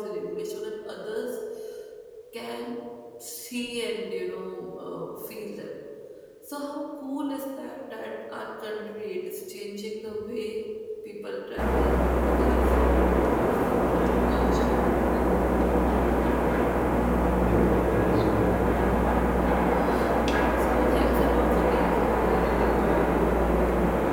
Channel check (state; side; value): identical; both; correlation 1.00